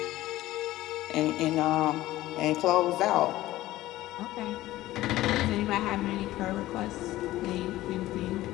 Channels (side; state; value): right; quieter; 16.0 dB